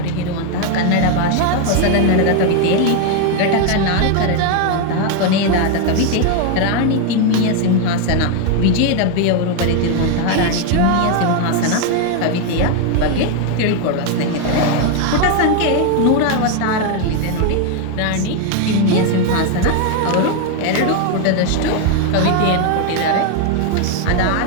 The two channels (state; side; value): different; both; correlation 0.01